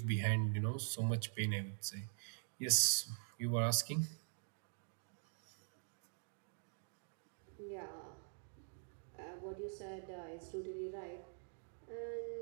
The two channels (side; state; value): left; silent; digital silence